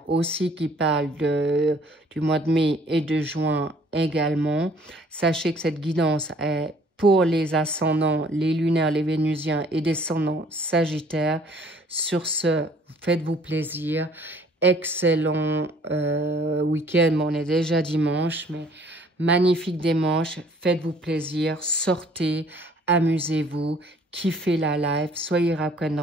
aussi qui parlent du mois de mai et de juin également. Sachez que cette guidance est pour les ascendants, les lunaires, les vénusiens et descendants sagittaires. Sur ce, faites-vous plaisir. Excellent week-end. Bon, on est déjà dimanche, mais magnifique dimanche. Faites-vous plaisir. Sortez, amusez-vous. Kiffez la life. Soyez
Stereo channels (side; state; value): both; normal; correlation 0.57